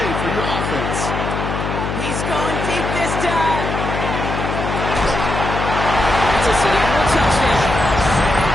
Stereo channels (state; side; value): noise; left; hum, 3 dB below the sound